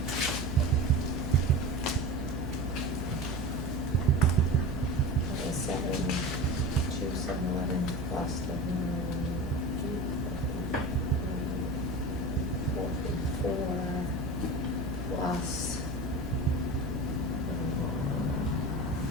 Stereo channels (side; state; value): both; normal; correlation 0.30